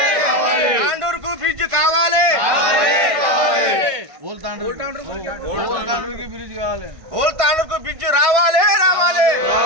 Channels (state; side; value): late; left; 1.6 ms